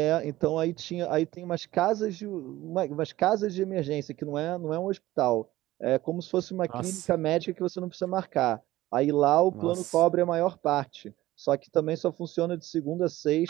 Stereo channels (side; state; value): left; quieter; 16.4 dB